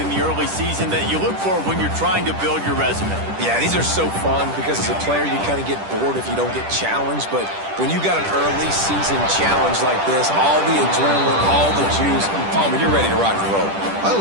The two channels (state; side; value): late; left; 10 ms